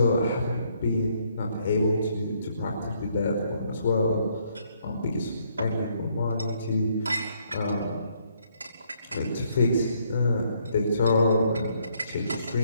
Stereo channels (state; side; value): inverted; both; correlation -0.70